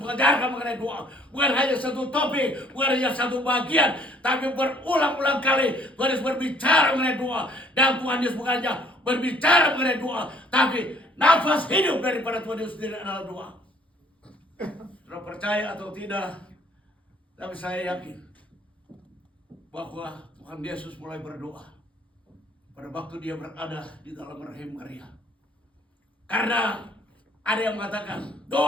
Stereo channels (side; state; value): both; normal; correlation 0.59